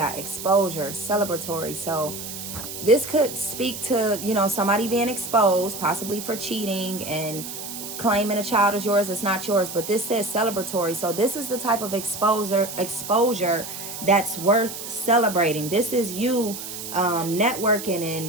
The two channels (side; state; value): right; noise; hiss, 9 dB below the sound